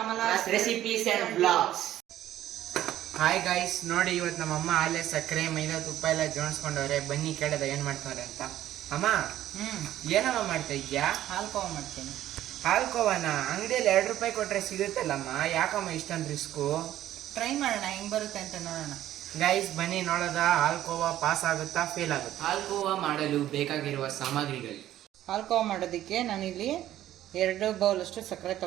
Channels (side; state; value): left; quieter; 12.9 dB